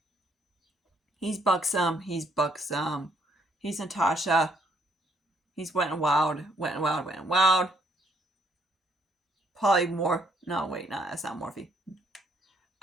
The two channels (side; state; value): both; normal; correlation 0.69